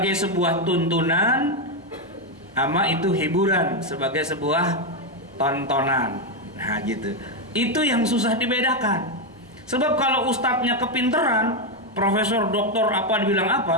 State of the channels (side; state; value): both; normal; correlation 0.05